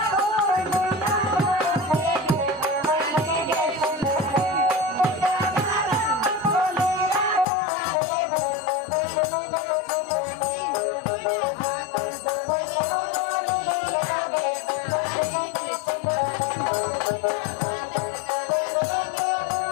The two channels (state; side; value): drops out; right; at 7.5 s